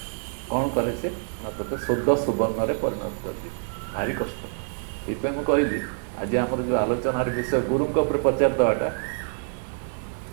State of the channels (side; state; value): left; silent; 57 dB below the other